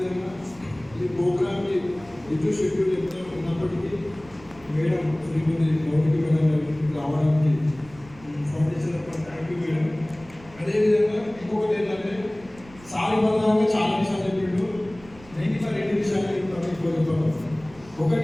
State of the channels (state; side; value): noise; right; rumble, 22 dB below the sound